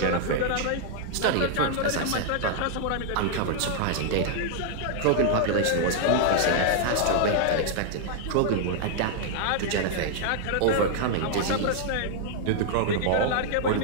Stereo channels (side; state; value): both; different; correlation -0.01